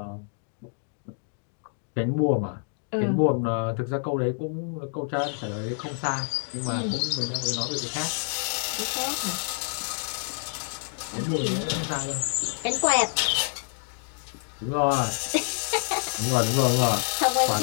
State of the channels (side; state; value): right; silent; digital silence